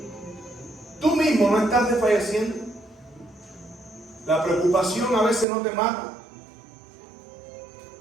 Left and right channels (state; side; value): drops out; left; at 5.5 s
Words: ¿Tú mismo no estás desfalleciendo? La preocupación a veces no te mata.